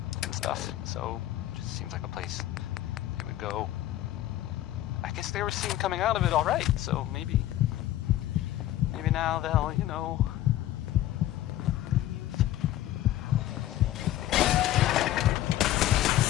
and stuff, so it just seems like a place they would go. I guess they were seen coming out of it all right, so maybe now they'll, you know, leave.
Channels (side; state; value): right; quieter; 13.8 dB